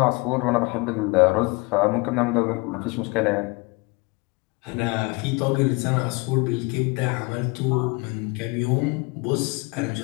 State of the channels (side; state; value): right; quieter; 27.4 dB